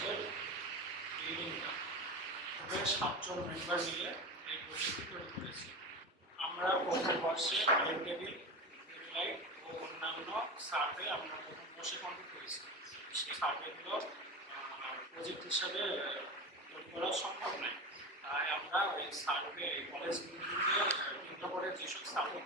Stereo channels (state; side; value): normal; both; correlation 0.25